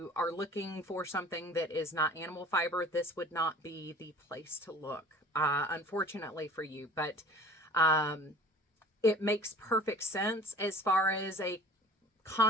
are looking for something that is not animal fiber, this would not be the place to look, unfortunately for you. But it makes perfect sense as far as a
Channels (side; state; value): both; normal; correlation 0.46